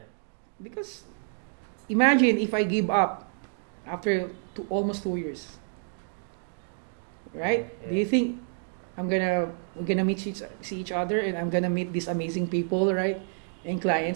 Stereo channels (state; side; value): silent; left; digital silence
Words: Because imagine if I give up after almost 2 years, right? Yeah. Do you think we're gonna see each other and I'm gonna meet these amazing people, right? And